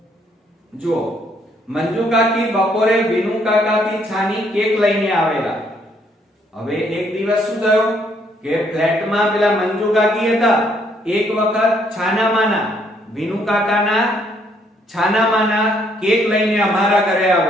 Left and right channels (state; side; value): normal; both; correlation 0.69